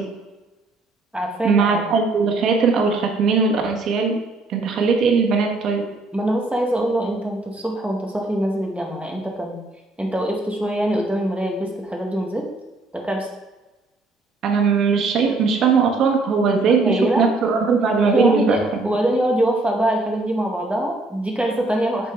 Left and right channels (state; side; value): quieter; left; 3.2 dB